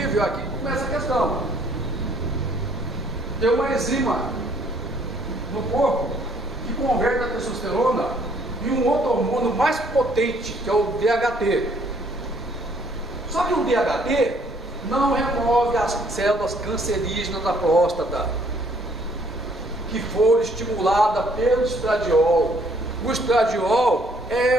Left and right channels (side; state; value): both; normal; correlation 0.63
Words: aqui começa a questão. Tem uma enzima no corpo que converte a testosterona em um outro hormônio mais potente, que é o DHT. Só que o DHT não remove as células cancerígenas da próstata, que foram estimuladas pelo estradiol. O estradiol